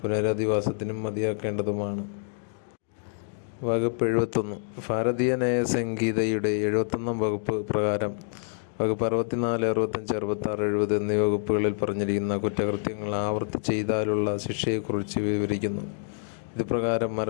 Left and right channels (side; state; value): right; silent; digital silence